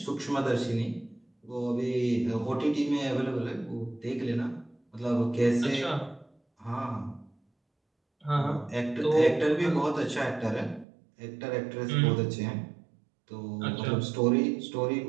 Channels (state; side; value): drops out; left; at 10.9 s